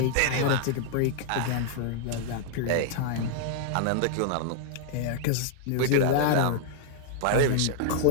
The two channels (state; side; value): different; both; correlation -0.01